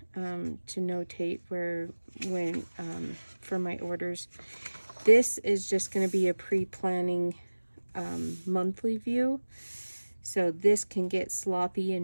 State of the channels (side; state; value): both; inverted; correlation -1.00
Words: to notate when for my orders. This is just going to be a pre-planning monthly view. So this can get sloppy